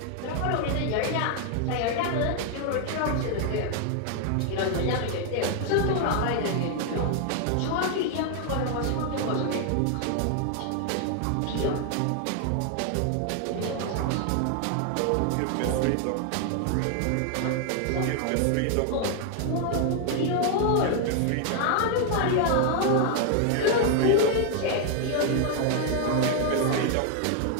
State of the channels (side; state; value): both; different; correlation 0.00